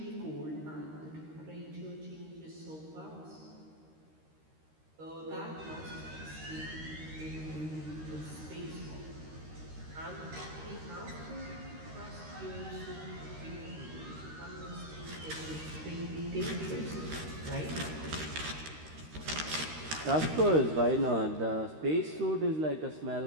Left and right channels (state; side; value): late; left; 13 ms